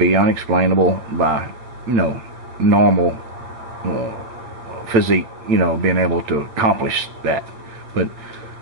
unexplainable by normal physique, being able to accomplish that. But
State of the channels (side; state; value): left; late; 8.8 ms